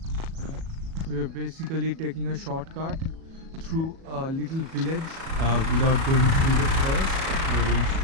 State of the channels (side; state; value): left; late; 37 ms